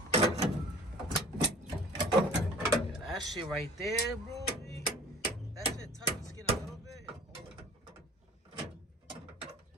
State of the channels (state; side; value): normal; both; correlation 0.46